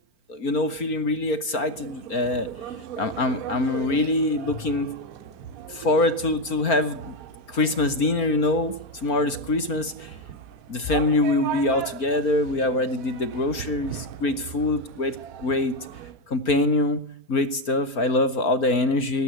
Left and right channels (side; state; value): right; late; 4.4 ms